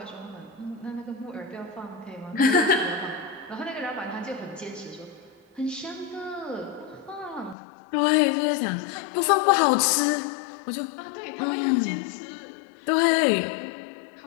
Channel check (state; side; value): drops out; right; at 7.6 s